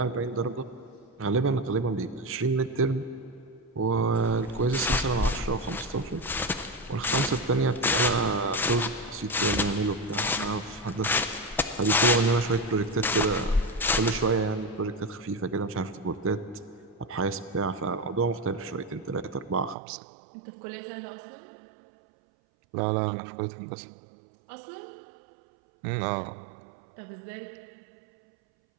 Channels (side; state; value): left; drops out; at 19.8 s